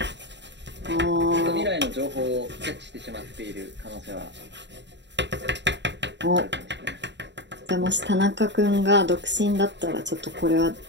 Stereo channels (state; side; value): late; left; 0.52 ms